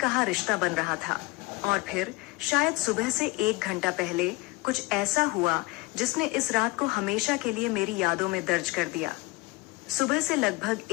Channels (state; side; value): quieter; right; 23.0 dB